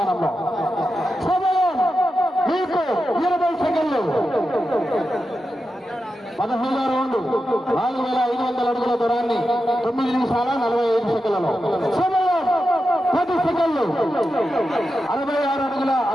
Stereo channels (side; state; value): both; normal; correlation 0.90